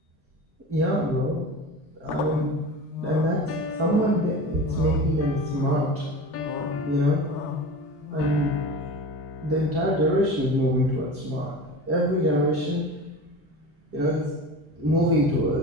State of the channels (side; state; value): both; normal; correlation 0.32